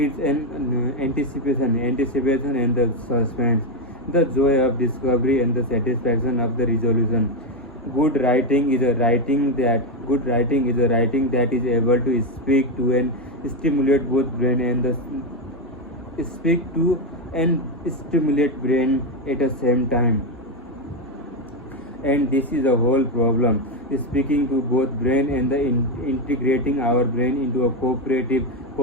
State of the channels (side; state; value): both; normal; correlation 0.07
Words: an anticipation and the suspense, the joy of discovery and the satisfaction of the resolution. Good writing is a writing that is able to speak to and stimulate both brain and the speak to and stimulate brain at the same time. And this is the whole problem, speaking to both brain and the integrating our brain into a cooperative,